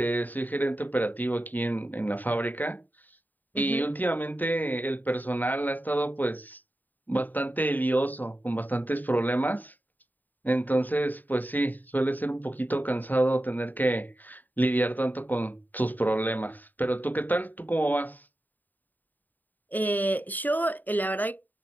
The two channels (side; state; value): right; late; 0.086 ms